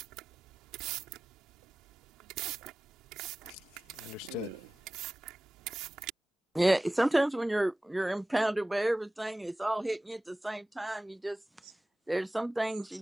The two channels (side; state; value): both; normal; correlation 0.96